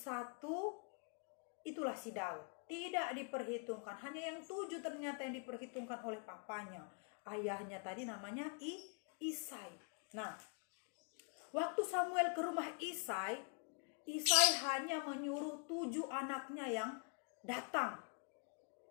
itulah si Daud. Tidak diperhitungkan, hanya yang 7 ternyata yang diperhitungkan oleh papanya. Ayahnya tadi namanya Isai. Nah, waktu Samuel ke rumah Isai hanya menyuruh 7 anaknya yang datang.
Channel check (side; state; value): right; quieter; 39.8 dB